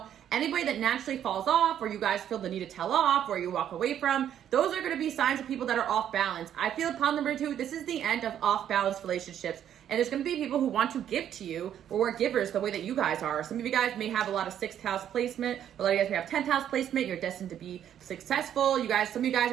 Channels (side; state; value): left; quieter; 10.1 dB